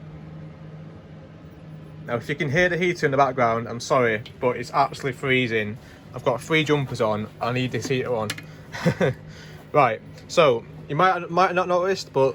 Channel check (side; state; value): both; identical; correlation 1.00